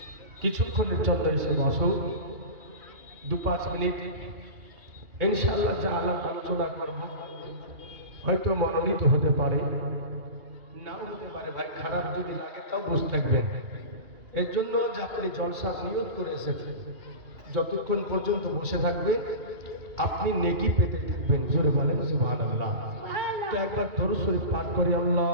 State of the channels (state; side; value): late; left; 2.8 ms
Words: কিছুক্ষণের জন্য এসে বসো, 2-5 মিনিট ইনশাআল্লাহ যা আলাপ আলোচনা করব হয়তো মনোনীত হতে পারে, নাও হতে পারে। ভাই খারাপ যদি লাগে তাও বসে থাকবেন। এর জন্য যে আপনি জলসা নিয়ত করে এসেছেন, যতক্ষণ পর্যন্ত বসে থাকবেন আপনি নেকি পেতে থাকবেন। জোরে বলেন সুবহানাল্লাহ। তো একবার দরুদ শরীফ পাঠ করি।